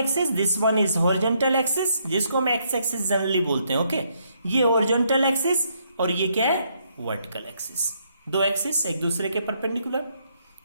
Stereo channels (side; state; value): both; inverted; correlation -0.73